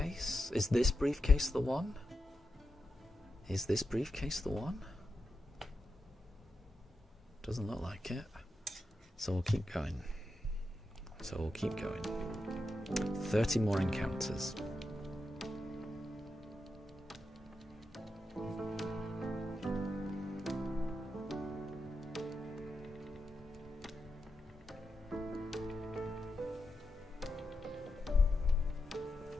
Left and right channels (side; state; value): both; normal; correlation 0.87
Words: Is this briefcase the one? Is this briefcase the one? Doesn't look like it. So we'll keep going. 30 more encounters.